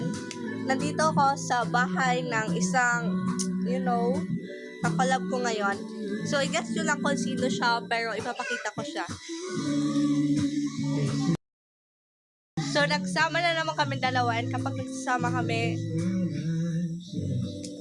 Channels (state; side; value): identical; both; correlation 1.00